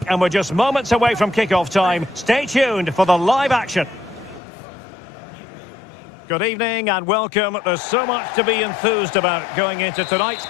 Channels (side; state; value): right; drops out; at 4.4 s